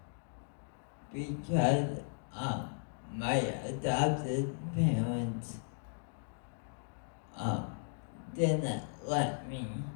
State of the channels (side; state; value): right; silent; digital silence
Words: because my adopted parents didn't let me.